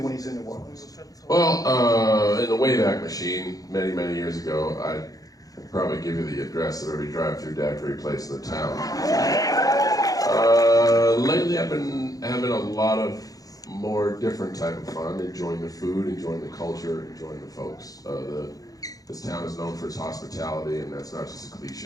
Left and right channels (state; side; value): late; right; 0.17 ms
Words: when he's in New Orleans? Well, in the Wayback Machine, many, many years ago, I'd probably give you the address of every drive-through daiquiri place in the town. Lately, I've been having a lot of more different type of fun, enjoying the food, enjoying the culture, enjoying the folks. This town is known for its hospitality, and that's not just a